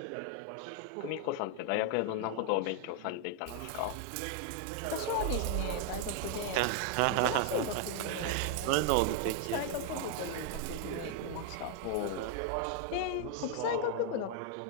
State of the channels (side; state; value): both; different; correlation 0.00